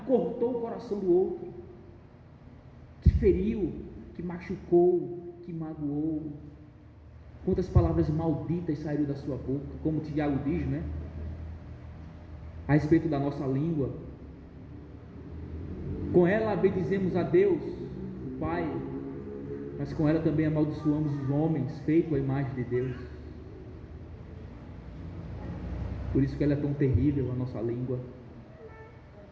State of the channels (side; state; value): both; identical; correlation 1.00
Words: cortou o coração do outro, que feriu, que machucou, que magoou? Quantas palavras malditas saíram da sua boca, como Tiago diz, né? A respeito da nossa língua. Com ela bendizemos a Deus, o Pai, mas com ela também amaldiçoamos os homens, feito à imagem de Deus. Por isso que ela é tão terrível, a nossa língua.